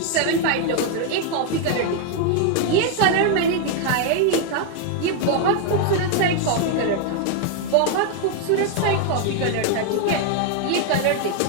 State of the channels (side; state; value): both; different; correlation 0.00